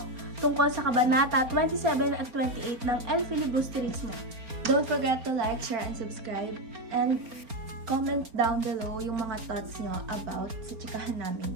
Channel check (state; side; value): late; left; 4.3 ms